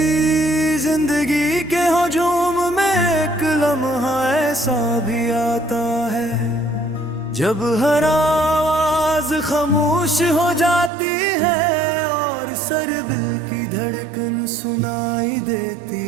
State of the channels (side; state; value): left; drops out; at 10.9 s